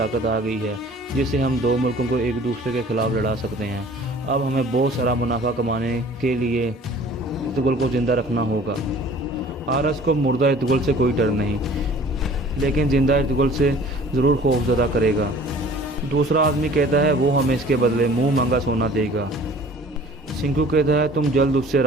आ गई है जिससे हम दो मुल्कों को एक दूसरे के खिलाफ लड़ा सकते हैं। अब हमें बहुत सारा मुनाफा कमाने के लिए इर्तुगुल को ज़िंदा रखना होगा। हारस को मुर्दा इर्तुगुल से कोई डर नहीं, लेकिन ज़िंदा इर्तुगुल से ज़रूर खौफज़दा करेगा। दूसरा आदमी कहता है, वो हमें इसके बदले मुँह मांगा सोना देगा। सिंकू कहता है, तुम जल्द उससे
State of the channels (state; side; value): normal; both; correlation 0.49